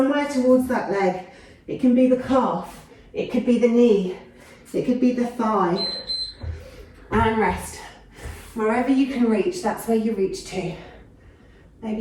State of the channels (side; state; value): both; identical; correlation 1.00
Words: towards that leg. It can be the calf, it could be the knee, it could be the thigh. And rest. Wherever you can reach, that's where you reach to.